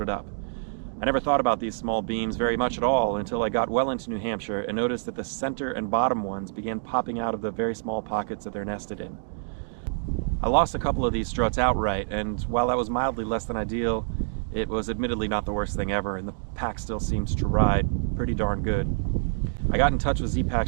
up. I never thought about these small beams very much at all until I got well into New Hampshire and noticed that the center and bottom ones began popping out of the very small pockets that they're nested in. I lost a couple of these struts outright, and while that was mildly less than ideal, it was admittedly not the worst thing ever, and the pack still seemed to ride pretty darn good. I got in touch with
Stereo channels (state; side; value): silent; left; digital silence